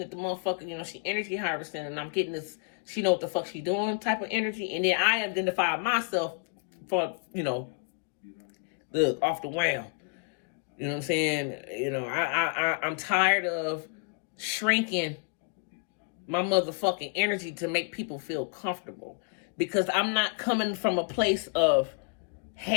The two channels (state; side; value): quieter; right; 37.6 dB